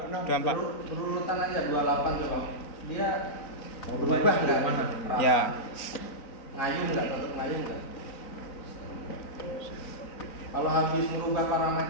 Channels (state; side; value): late; right; 3.9 ms